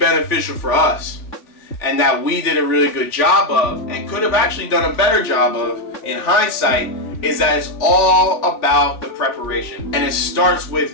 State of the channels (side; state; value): right; late; 3.5 ms